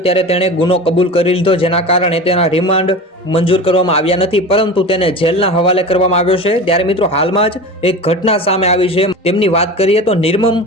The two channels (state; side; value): normal; both; correlation 0.32